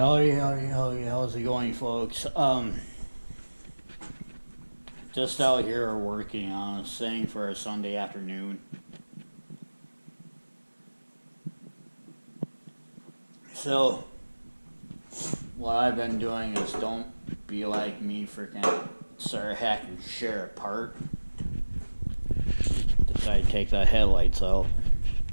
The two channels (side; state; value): both; inverted; correlation -1.00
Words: it going, folks? Just out here working on a thing for a Sunday afternoon. So, what I've been doing is don't be like me, freaking Mr.Hick and share it apart. Decided to take the headlights out,